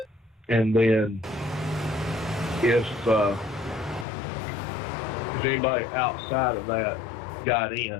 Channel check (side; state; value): right; drops out; at 4.0 s